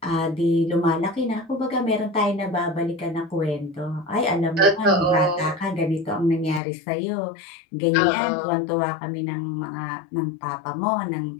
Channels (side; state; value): right; drops out; at 6.6 s